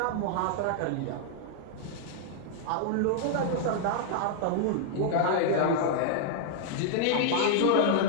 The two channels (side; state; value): both; different; correlation -0.01